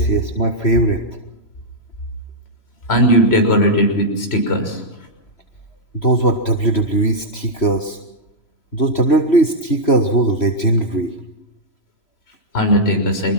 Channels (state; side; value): late; right; 3.0 ms